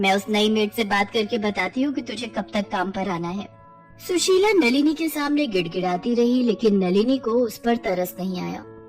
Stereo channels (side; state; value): both; identical; correlation 1.00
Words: उस नई मेड से बात करके बताती हूँ कि तुझे कब तक काम पर आना है। सुशीला नलिनी के सामने गिड़गिड़ाती रही, लेकिन नलिनी को उस पर तरस नहीं आया।